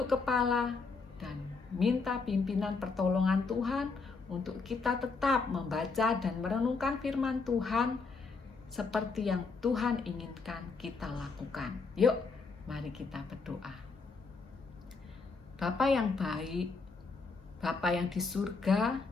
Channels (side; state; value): right; quieter; 4.4 dB